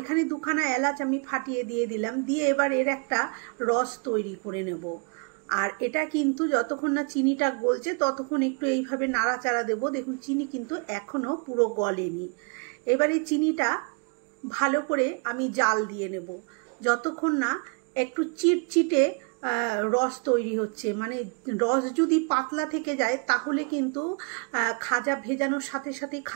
2খানা এলাচ আমি ফাটিয়ে দিয়ে দিলাম, দিয়ে এবার এর একটা রস তৈরি করে নেব। আর এটা কিন্তু যতক্ষণ না চিনিটা গলছে ততক্ষণ একটু এইভাবে নাড়াচাড়া দেব। দেখুন চিনি কিন্তু এখনো পুরো গলেনি। এবারে চিনিটা ভালো করে আমি জাল দিয়ে নেব যতক্ষণ না একটু চিটচিটে রস তৈরি হচ্ছে। মানে রস যদি পাতলা থেকে যায় তাহলে কিন্তু খাজা ভেজানোর সাথে সাথেই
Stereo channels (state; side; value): quieter; left; 33.7 dB